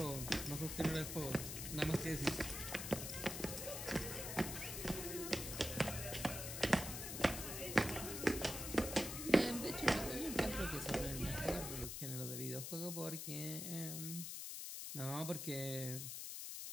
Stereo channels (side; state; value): left; noise; hiss, 5 dB below the sound